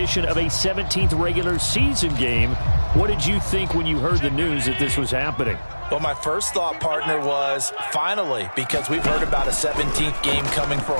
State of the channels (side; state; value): both; inverted; correlation -1.00